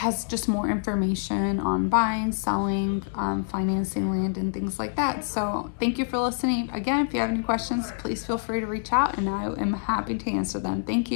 just more information on buying, selling, financing land and things like that. So thank you for listening. Again, if you have any questions, please feel free to reach out and I am happy to answer them. Thank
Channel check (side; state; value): right; silent; digital silence